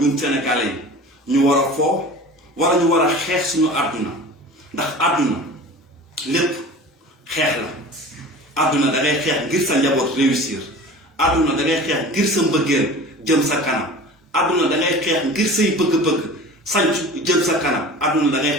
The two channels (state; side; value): normal; both; correlation 0.38